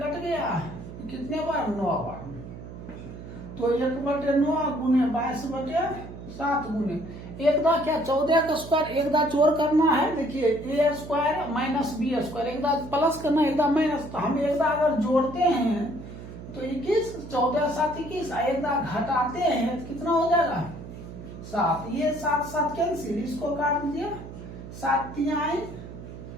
गया कितने बार, 9 बार। तो 1 बटे 9 गुने 22 बटे 7 गुने एक दा क्या 14 का स्क्वायर, एक दा जोड़ करना है। देखिए ए स्क्वायर माइनस बी स्क्वायर, एक दा प्लस करना है, एक दा माइनस। तो हम एक दा अगर जोड़ते हैं तो 21, 14 7 21, एक दा घटाते हैं तो कितना हो जाएगा, 7। ये 7 7 कैंसिल, इसको काट दिया, 7 तिहाई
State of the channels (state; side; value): noise; right; hum, 12 dB below the sound